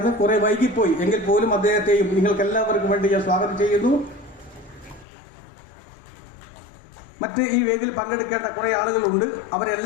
കുറെ വൈകിപ്പോയി, എങ്കിൽ പോലും അദ്ദേഹത്തെയും നിങ്ങൾക്ക് എല്ലാവർക്കും വേണ്ടി ഞാൻ സ്വാഗതം ചെയ്യുന്നു. മറ്റ് ഈ വേദിയിൽ പങ്കെടുക്കേണ്ട കുറെ ആളുകളുണ്ട്,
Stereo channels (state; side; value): drops out; right; at 5.1 s